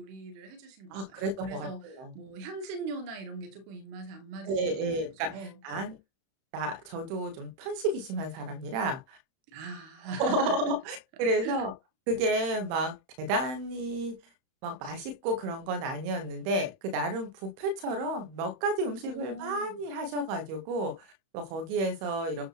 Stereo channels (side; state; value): left; late; 31 ms